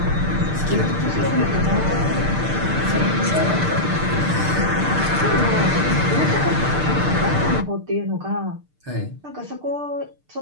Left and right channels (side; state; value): left; late; 6.6 ms